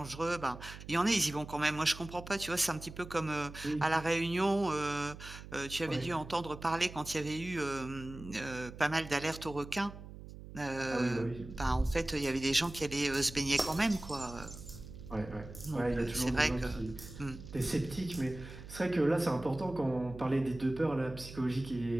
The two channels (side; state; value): right; noise; hum, 14 dB below the sound